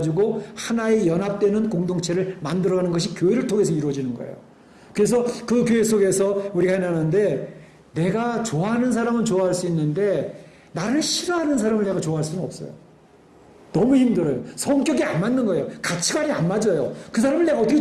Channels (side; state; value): both; identical; correlation 1.00